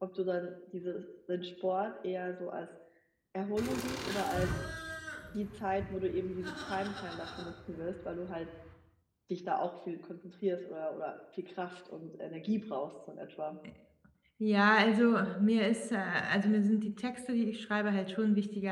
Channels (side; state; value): both; identical; correlation 1.00